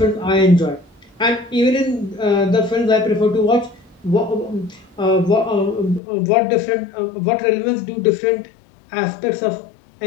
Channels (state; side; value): drops out; right; at 6.0 s